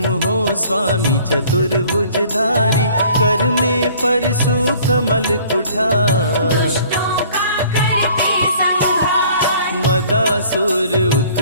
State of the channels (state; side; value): inverted; both; correlation -0.54